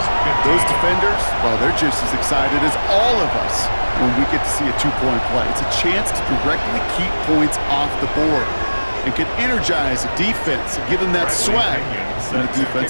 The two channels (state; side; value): inverted; both; correlation -1.00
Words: 15. Those defenders, well, they're just as excited as all of us when we get to see a 2-point play. It's a chance to directly keep points off the board and can energize the defense and give them that swag when the